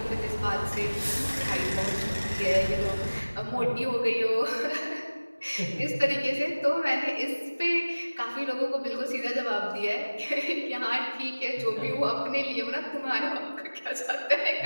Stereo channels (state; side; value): inverted; both; correlation -1.00